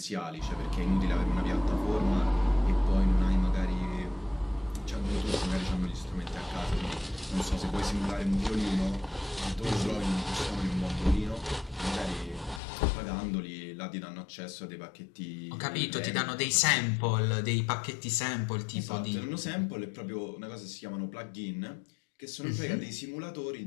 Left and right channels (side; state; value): right; drops out; at 12.6 s